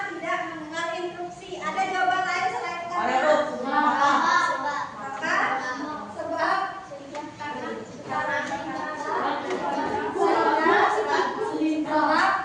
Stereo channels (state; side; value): identical; both; correlation 1.00